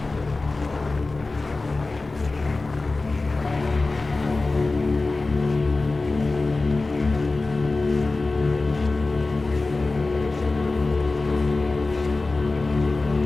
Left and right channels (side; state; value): right; quieter; 3.4 dB